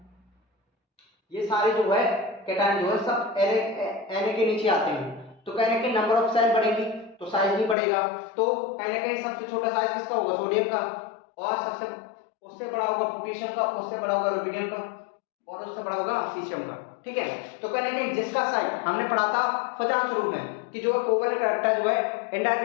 ये सारे जो है केटायन जो है सब Na के नीचे आते हैं, तो कहने के नंबर ऑफ सेल बढ़ेगी तो साइज भी बढ़ेगा। तो कहीं ना कहीं सबसे छोटा साइज किसका होगा, सोडियम का, और सबसे उससे बड़ा होगा पोटेशियम का, उससे बड़ा होगा रुबिडियम का, और उससे बड़ा होगा सीशियम का। ठीक है, तो कहने के जिसका साइज हमने पढ़ा था फजांश रूप में कि जो कोवलेंट कैरेक्टर जो है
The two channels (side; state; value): right; drops out; at 7.8 s